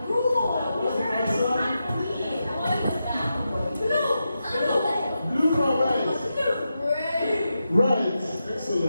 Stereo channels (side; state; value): both; inverted; correlation -0.88